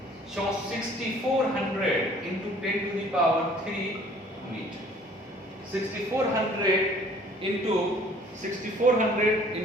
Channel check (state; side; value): normal; both; correlation 0.54